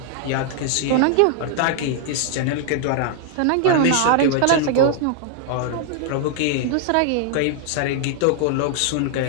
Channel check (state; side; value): different; both; correlation 0.00